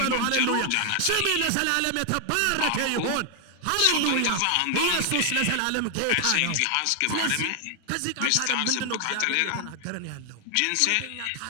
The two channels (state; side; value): different; both; correlation 0.00